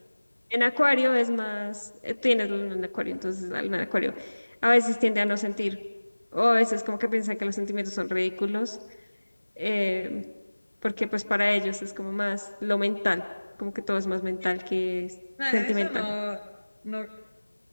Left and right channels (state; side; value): inverted; both; correlation -1.00